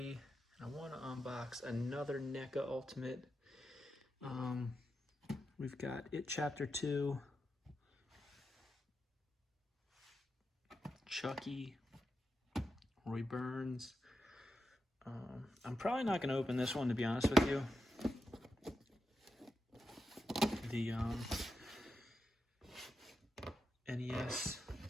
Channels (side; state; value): both; normal; correlation 0.87